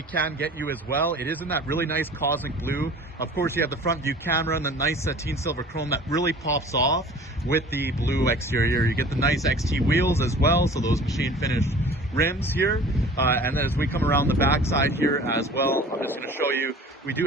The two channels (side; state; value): both; normal; correlation 0.44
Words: can get you as well. It is in that really nice cosmic blue. Of course, you have the front view camera and the nice sateen silver chrome that really pops off with the blue exterior. You get the nice XT wheels as well, so those machine finished rims here, and then as we come around the back side here as well, I'm just going to show you, we do